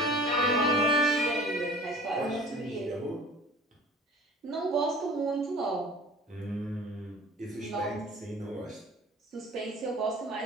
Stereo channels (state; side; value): normal; both; correlation 0.44